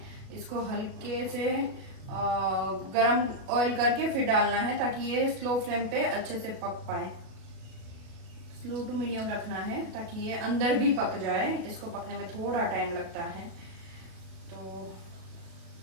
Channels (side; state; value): left; late; 37 ms